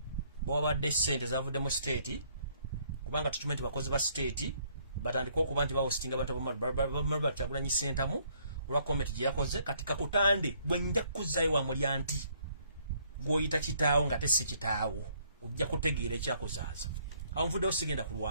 bo badde sente zavudde mu state kubanga tukimanyi bakozi ba state batandika okuba nti bahostinga abantu bamalwa Kyagulanyi Center mu olwa comment gye yakoze katika kutande bwe nja kuzaayo wa mulyanti gwoyita kitaawo nga tesi kitaawo ojja kutegeera ekyakozaaza anvudde osigenda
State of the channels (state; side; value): inverted; both; correlation -0.66